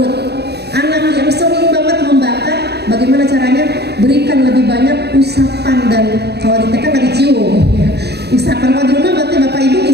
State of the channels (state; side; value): late; left; 0.48 ms